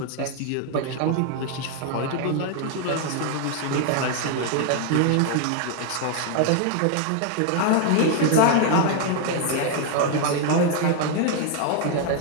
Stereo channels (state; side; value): different; both; correlation 0.00